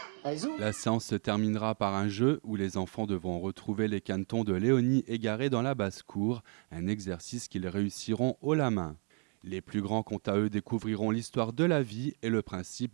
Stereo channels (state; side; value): quieter; left; 39.4 dB